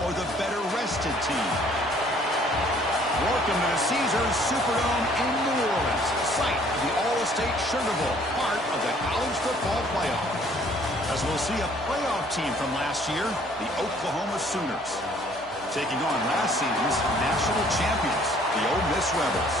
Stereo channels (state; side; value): normal; both; correlation 0.59